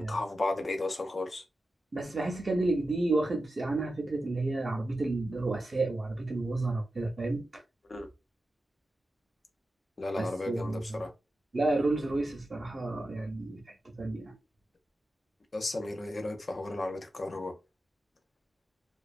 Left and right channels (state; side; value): normal; both; correlation 0.91